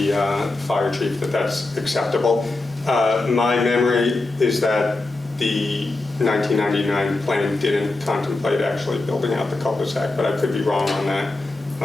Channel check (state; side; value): quieter; right; 3.1 dB